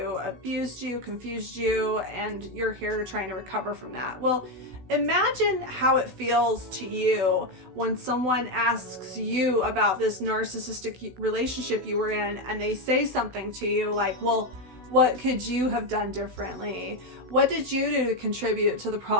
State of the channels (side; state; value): left; late; 16 ms